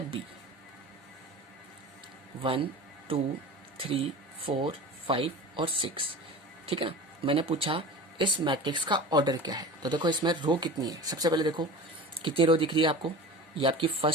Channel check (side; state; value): both; normal; correlation 0.35